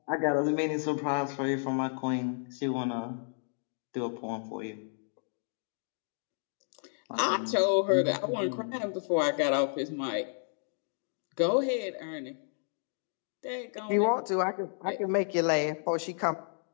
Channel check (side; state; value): right; silent; digital silence